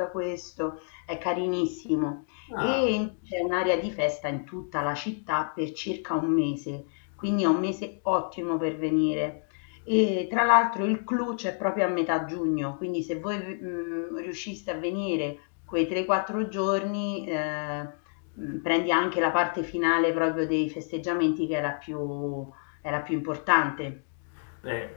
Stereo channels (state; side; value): silent; right; 59 dB below the other